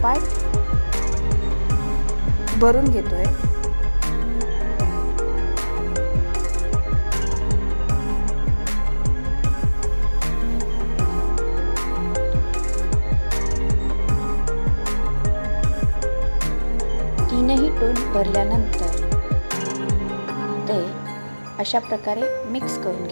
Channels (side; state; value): both; inverted; correlation -1.00